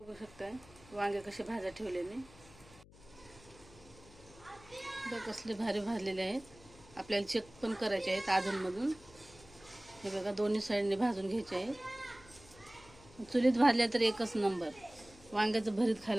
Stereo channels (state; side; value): noise; left; hum, 22 dB below the sound